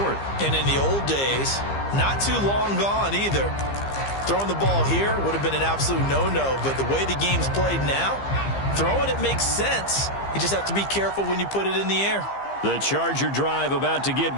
And in the old days, not too long gone either. Throwing the ball here would have been an absolute no-no. But the way the game's played now, throwing it makes sense. You just have to be careful when you put it in the air. The Charger drive about to get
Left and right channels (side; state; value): right; late; 15 ms